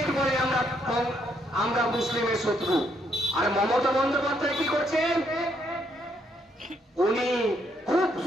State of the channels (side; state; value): both; normal; correlation 0.73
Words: বলে আমরা মুসলিমের শত্রু। আর মমতা বন্দ্যোপাধ্যায় কি করছেন? উনি খুব